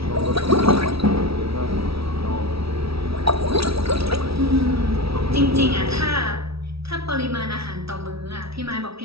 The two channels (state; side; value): late; left; 0.76 ms